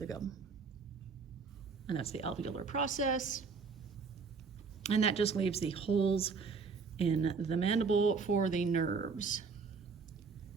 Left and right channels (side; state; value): left; quieter; 5.0 dB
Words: gum. And that's the alveolar process. And that just leaves the holes in the mandible for the nerves.